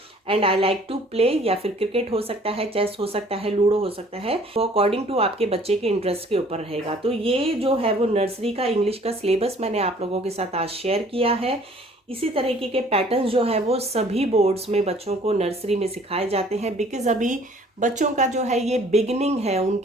And I like to play, या फिर क्रिकेट हो सकता है, चेस हो सकता है, लूडो हो सकता है, वो अकॉर्डिंग टू आपके बच्चे के इंटरेस्ट के ऊपर रहेगा। तो ये जो है वो नर्सरी का इंग्लिश का सिलेबस मैंने आप लोगों के साथ आज शेयर किया है। इसी तरीके के पैटर्न्स जो है वो सभी बोर्ड्स में बच्चों को नर्सरी में सिखाए जाते हैं, बिकॉज अभी बच्चों का जो है ये बिगिनिंग है,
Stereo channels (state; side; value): normal; both; correlation 0.55